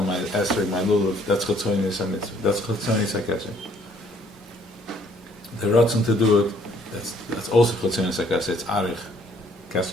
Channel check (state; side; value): normal; both; correlation 0.62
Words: my esrog, my lulav. That's Chetzonis HaMitzvah. That's Chetzonis HaKeser. The ratzon to do it, that's also Chetzonis HaKeser. It's Arich.